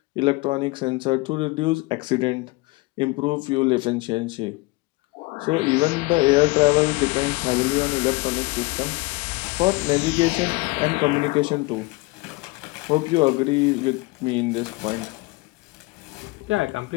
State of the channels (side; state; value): right; quieter; 23.6 dB